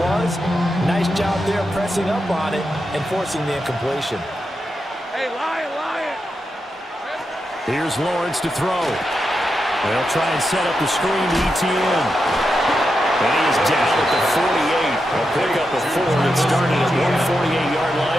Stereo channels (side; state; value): both; normal; correlation 0.87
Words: Nice job there pressing up on it and forcing the incompletion. Hey, Lion. Here's Lawrence to throw. They'll try and set up the screen to ETN. And he is down at the 48. They'll pick up a 4 that started at 148-yard